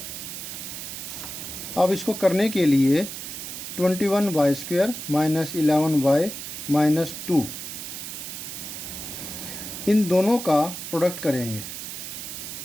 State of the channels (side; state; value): right; noise; hiss, 8 dB below the sound